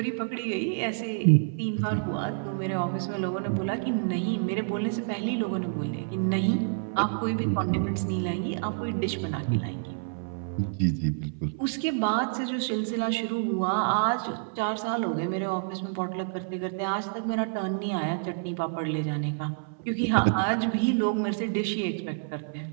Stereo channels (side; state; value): left; silent; 59 dB below the other